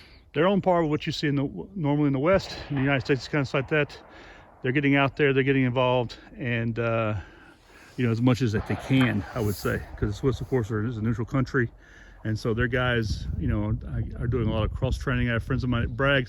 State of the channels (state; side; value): identical; both; correlation 1.00